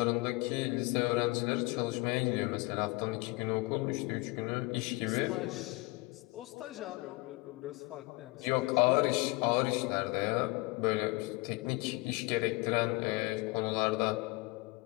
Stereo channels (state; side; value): quieter; right; 24.3 dB